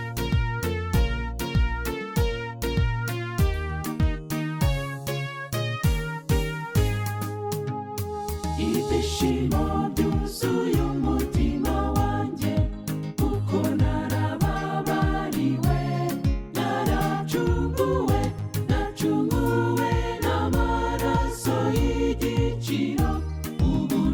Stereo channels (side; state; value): both; identical; correlation 1.00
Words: Ibyishimo byuzuye umutima wanjye, kuko narababariwe, naracunguwe, nacunguwe n'amaraso y'igiciro. Ubu